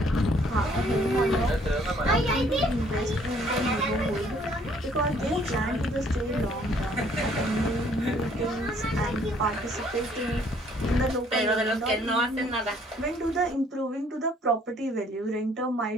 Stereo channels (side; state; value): both; normal; correlation 0.62